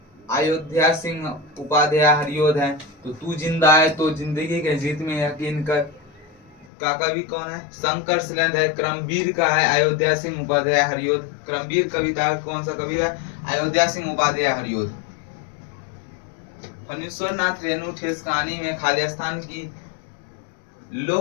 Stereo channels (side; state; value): right; drops out; at 6.7 s